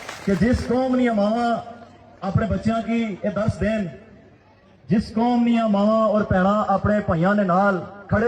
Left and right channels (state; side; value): identical; both; correlation 1.00